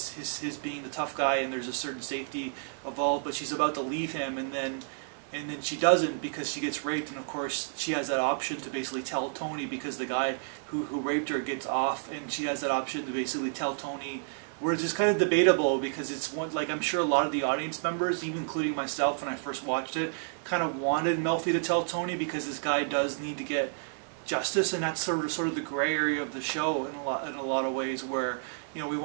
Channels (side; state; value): left; silent; digital silence